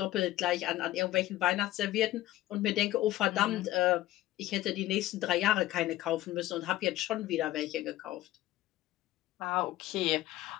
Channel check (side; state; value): right; quieter; 15.4 dB